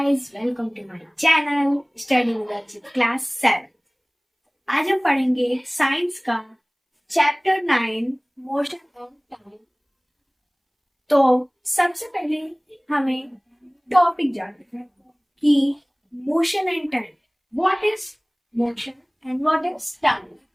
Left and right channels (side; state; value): both; identical; correlation 1.00